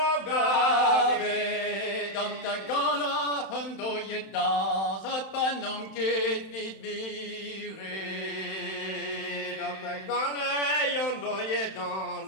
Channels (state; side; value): late; right; 31 ms